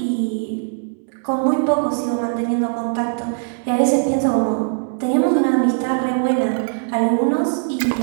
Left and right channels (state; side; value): silent; left; digital silence